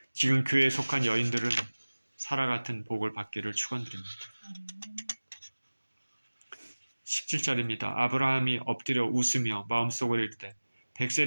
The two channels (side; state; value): both; inverted; correlation -1.00